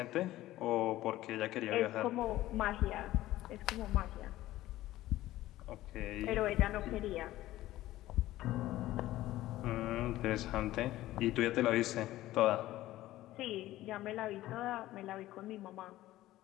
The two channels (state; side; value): quieter; right; 15.6 dB